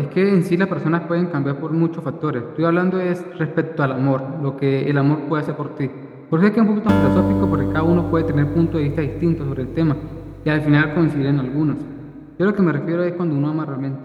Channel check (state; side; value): identical; both; correlation 1.00